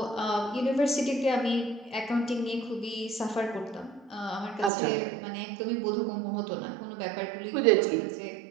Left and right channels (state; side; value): drops out; left; at 4.7 s